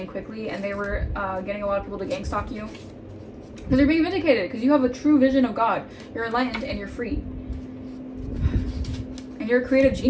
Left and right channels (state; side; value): identical; both; correlation 1.00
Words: quickly and they were getting a lot of people to gang stalk you. Because you're being vindicated, because you have a true vision of God. You're enlightened and you're free. And you're a creative